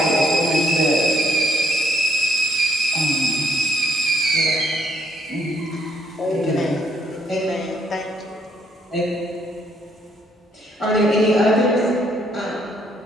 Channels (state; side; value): normal; both; correlation 0.69